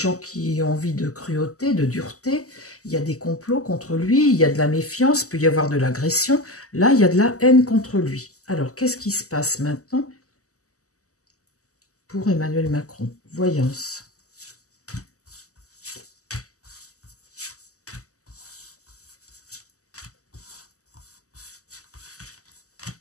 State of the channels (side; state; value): right; late; 0.66 ms